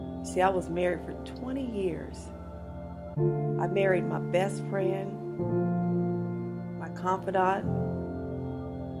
See, I was married for 20 years. I married my best friend, my confidant.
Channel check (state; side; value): identical; both; correlation 1.00